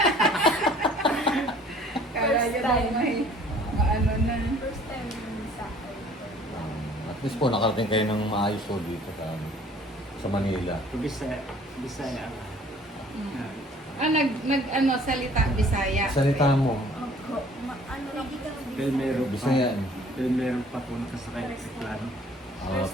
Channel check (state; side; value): normal; both; correlation 0.54